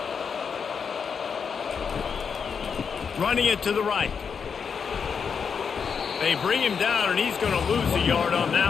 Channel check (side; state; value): right; quieter; 6.3 dB